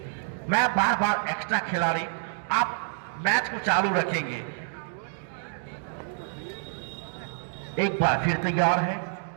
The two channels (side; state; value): left; silent; digital silence